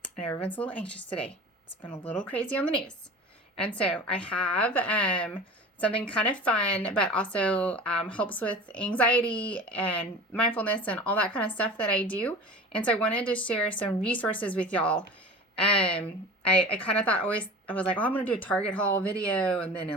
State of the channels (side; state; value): both; normal; correlation 0.36